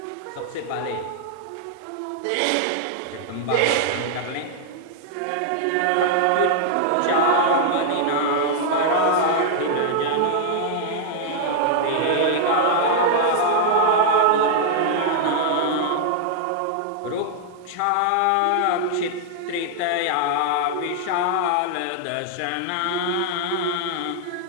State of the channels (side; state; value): both; different; correlation -0.01